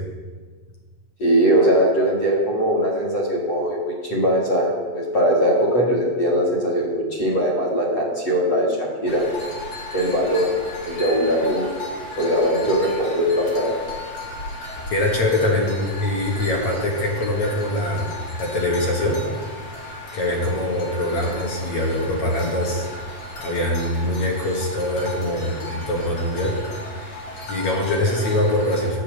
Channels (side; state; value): right; late; 8.9 ms